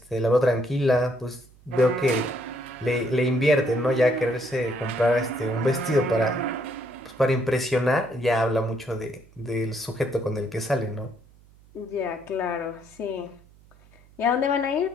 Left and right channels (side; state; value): right; noise; hum, 27 dB below the sound